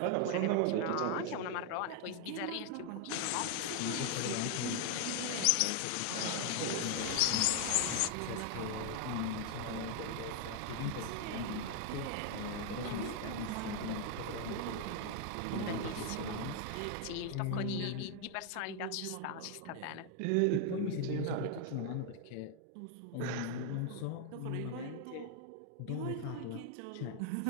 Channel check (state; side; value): different; both; correlation 0.00